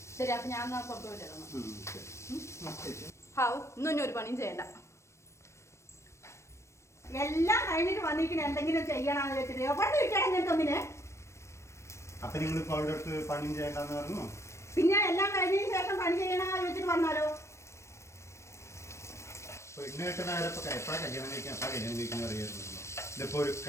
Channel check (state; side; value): late; right; 0.13 ms